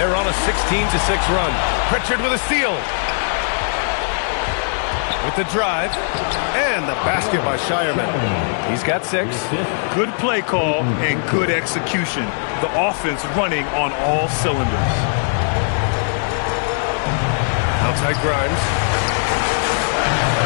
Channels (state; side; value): silent; right; digital silence